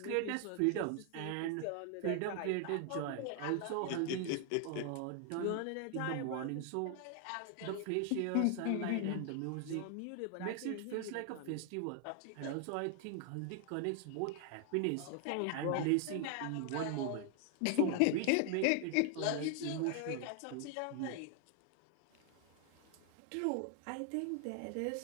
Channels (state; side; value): different; both; correlation 0.00